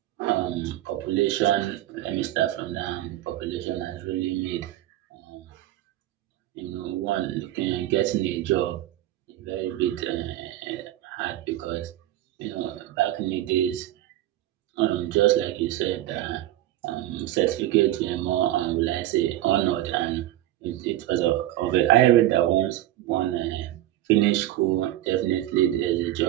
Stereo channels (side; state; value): left; quieter; 14.3 dB